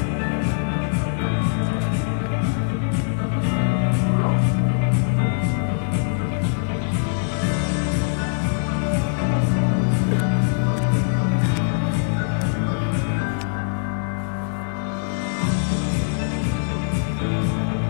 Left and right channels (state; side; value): silent; right; digital silence